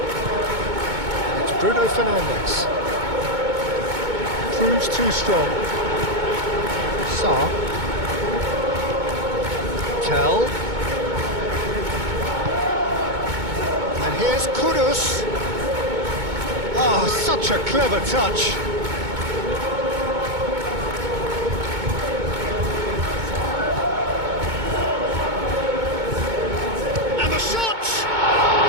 And it's Bruno Fernandes. Proves too strong. Sarr. Tell. And here's Kudus. Oh, such a clever touch. And the shot!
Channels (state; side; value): late; left; 2.2 ms